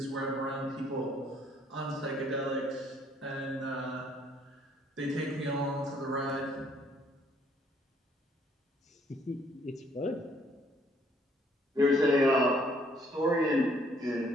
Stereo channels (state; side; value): normal; both; correlation 0.65